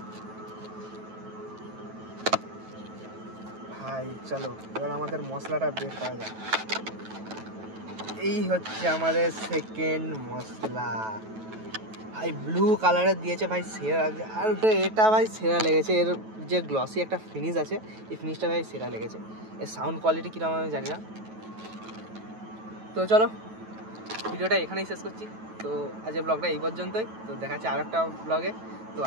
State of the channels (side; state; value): left; late; 9.2 ms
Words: ভাই চলো এবার আমাদের মশলাটা বের করা যায়। এই হচ্ছে আমাদের সেকেন্ড মশলা, ভাই ব্লু কালারের দিয়েছে ভাই, সেরা লাগছে। আর এটা ভাই সেরা লেগেছে, এর যে গ্লসি একটা ফিনিশ আছে, এই ফিনিশটা ভাই সেরা লেগেছে। এর সাউন্ড কোয়ালিটি কীরকম আমি জানি না। তো চলো ভিডিওটা এখানেই শেষ করছি। তো আজকের ব্লগটা এই পর্যন্তই, তো দেখা যাচ্ছে আর একটা ব্লগে। তো